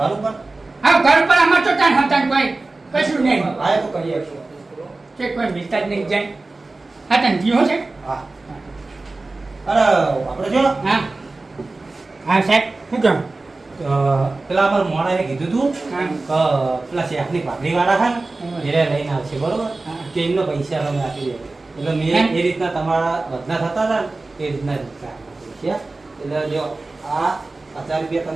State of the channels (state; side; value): quieter; left; 3.3 dB